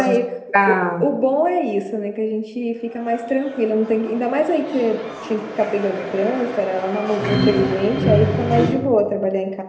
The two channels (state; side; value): identical; both; correlation 1.00